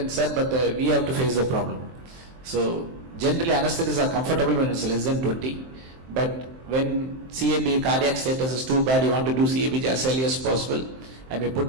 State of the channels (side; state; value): left; late; 23 ms